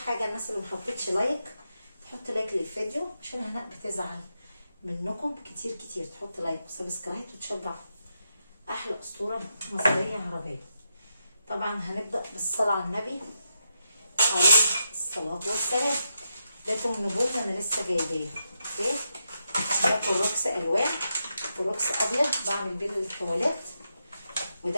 الناس اللي محطتش لايك تحط لايك للفيديو، عشان هناء بتزعل منكم كتير كتير. تحط لايك وسبسكرايب وتشجع احلى اسطوره مصريه عربيه. طبعا هنبدا بالصلاه على النبي عليه الصلاه والسلام. ده نبوت انا لسه جايباه. اوكي، ده كلوكس الوان، كلوكس ابيض بعمل بيه التواليت،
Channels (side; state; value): both; inverted; correlation -0.84